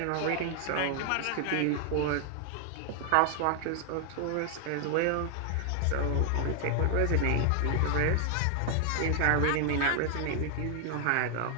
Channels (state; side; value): different; both; correlation 0.00